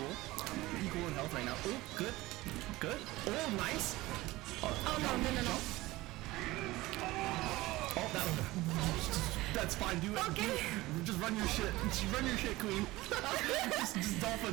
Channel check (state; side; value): quieter; left; 19.1 dB